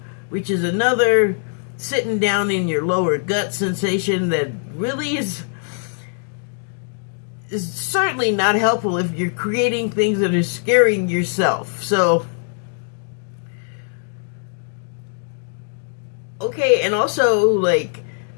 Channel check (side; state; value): right; silent; digital silence